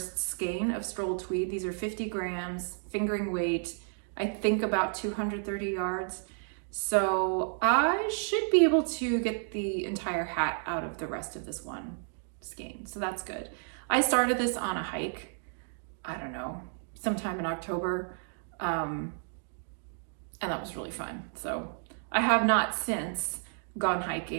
skein of Stroll Tweed. These are 50 grams, fingering weight, I think about 230 yards. So I should be able to get the entire hat out of the rest of this one skein. So that's good. I started this on a hike, I don't know, sometime in October. And that was really fun. So I have not since gone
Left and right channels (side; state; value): left; silent; 57 dB below the other